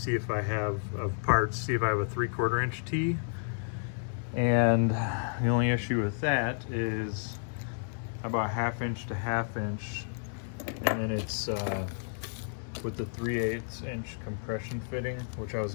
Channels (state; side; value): silent; right; digital silence